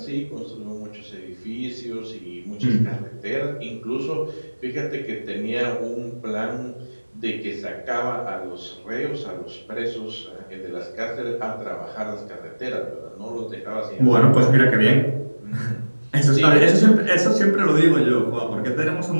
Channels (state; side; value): inverted; both; correlation -1.00